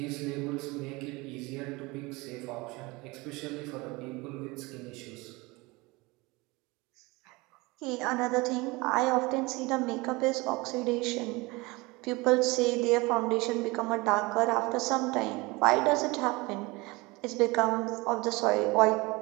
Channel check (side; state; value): left; quieter; 23.8 dB